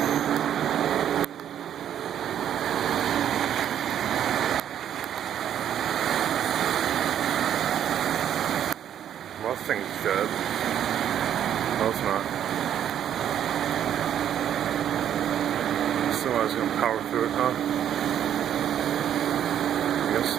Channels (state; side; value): quieter; left; 9.9 dB